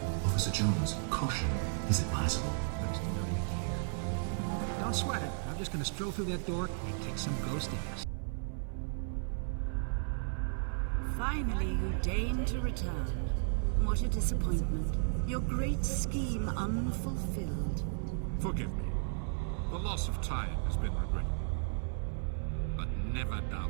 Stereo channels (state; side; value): silent; left; 55 dB below the other